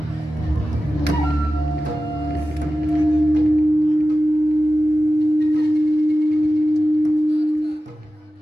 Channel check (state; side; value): normal; both; correlation 0.94